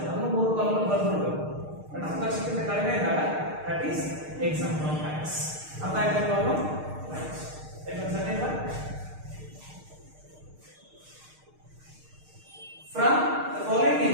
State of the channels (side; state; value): left; late; 6.5 ms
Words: ಅದನ್ನು 3 ಕಾಲಮ್ ಬರ್ಬಿಡ್ಬೇಕು. ಬಟ್ 10 ಲಕ್ಷಕ್ಕಿಂತ ಕಡಿಮೆ ಇದ್ದಾಗ that is exam from tax. ಅರ್ಥ ಆಯ್ತಾ problem?